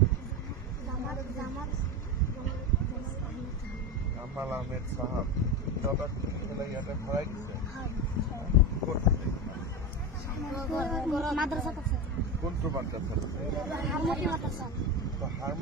জামাল আহমেদ চাহাব। তহঁতক খুলি পেলাই ইয়াতে ভৰাই দিছে? ক'ত? কোনটো মাদ্ৰাছাত?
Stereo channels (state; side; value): normal; both; correlation 0.20